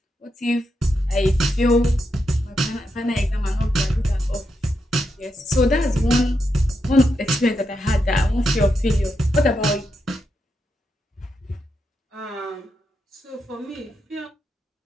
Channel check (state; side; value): normal; both; correlation 0.84